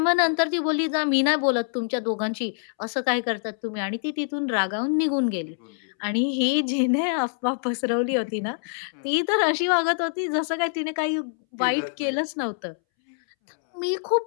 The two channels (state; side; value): silent; right; 62 dB below the other